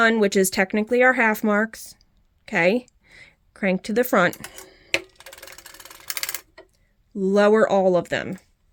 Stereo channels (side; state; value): both; identical; correlation 1.00